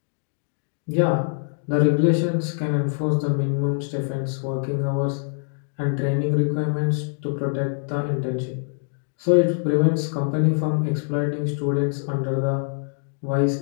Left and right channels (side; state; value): right; silent; digital silence